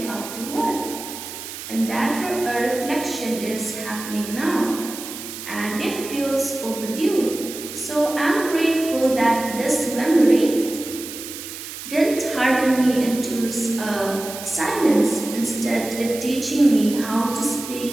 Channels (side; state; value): right; noise; hiss, 10 dB below the sound